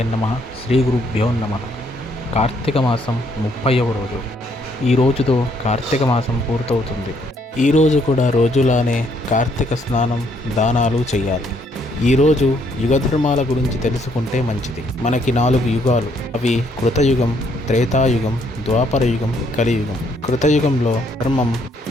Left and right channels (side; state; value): both; normal; correlation 0.69